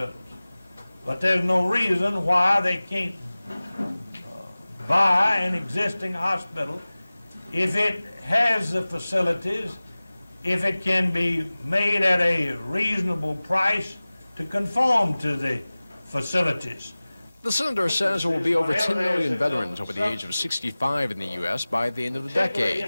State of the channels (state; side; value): inverted; both; correlation -0.98